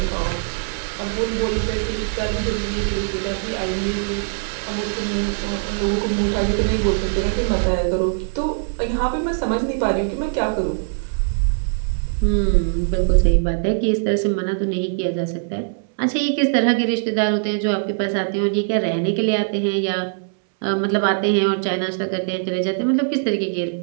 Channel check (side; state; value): left; silent; 65 dB below the other